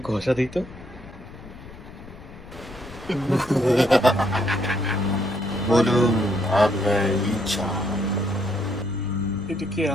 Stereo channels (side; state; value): left; noise; rumble, 17 dB below the sound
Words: ঘষা দিই তো। বলুন আপনার ইচ্ছা। এটা কি